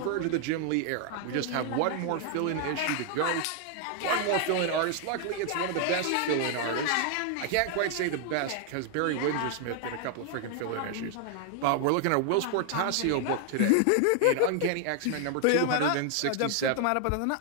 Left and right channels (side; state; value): both; different; correlation 0.00